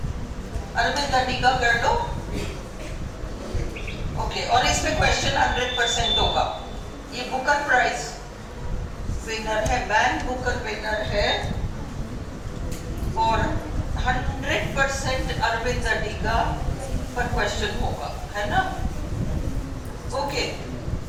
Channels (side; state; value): both; identical; correlation 1.00